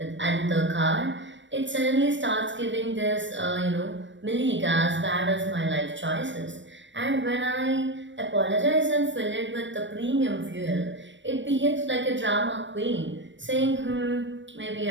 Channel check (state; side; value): late; left; 0.54 ms